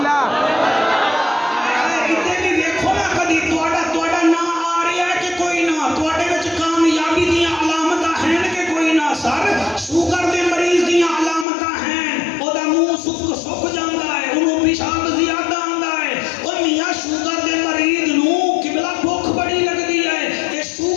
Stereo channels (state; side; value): drops out; right; at 11.5 s